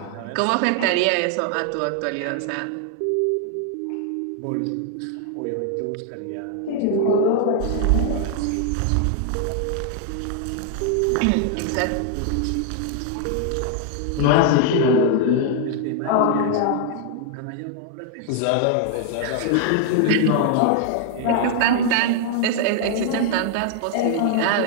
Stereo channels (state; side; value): different; both; correlation 0.00